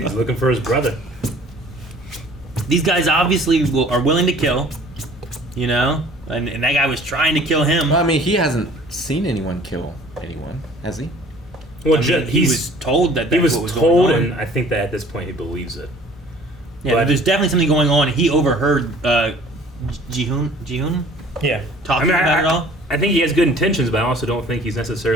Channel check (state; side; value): normal; both; correlation 0.51